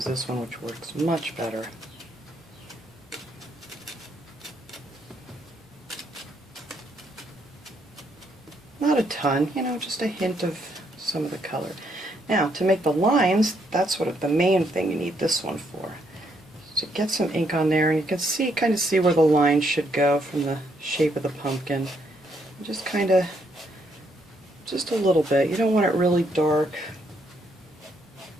this one, which works much better. Not a ton, you know, just a hint of some of the color. Now, to make the lines, that's what the main thing you need this one for. So get some ink on there, and you can see, kind of see where the lines should go from the shape of the pumpkin. Just kind of, just a little bit. You don't want it really dark.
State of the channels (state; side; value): normal; both; correlation 0.74